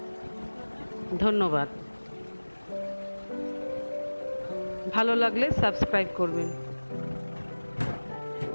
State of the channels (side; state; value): both; inverted; correlation -1.00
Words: ধন্যবাদ। ভালো লাগলে সাবস্ক্রাইব করবেন।